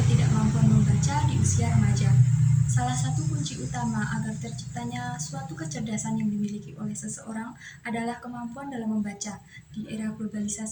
membaca di usia remaja. Salah satu kunci utama agar terciptanya suatu kecerdasan yang dimiliki oleh seseorang adalah kemampuan dalam membaca. Di era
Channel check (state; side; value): identical; both; correlation 1.00